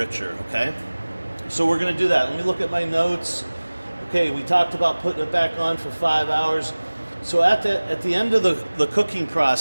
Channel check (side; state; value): both; inverted; correlation -1.00